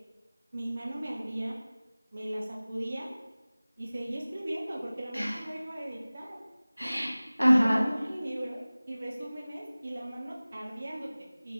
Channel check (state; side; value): inverted; both; correlation -0.99